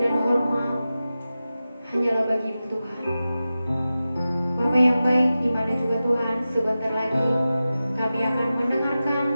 hormat hanyalah bagi-Mu Tuhan. Bapa yang baik, di mana juga Tuhan, sebentar lagi kami akan mendengarkan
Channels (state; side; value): inverted; both; correlation -0.94